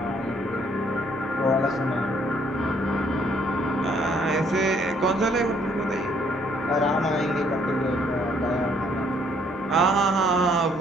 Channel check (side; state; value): both; normal; correlation 0.65